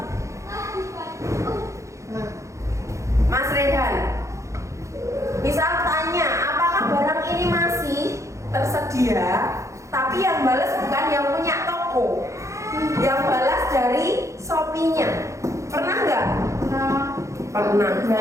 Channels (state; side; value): late; left; 0.15 ms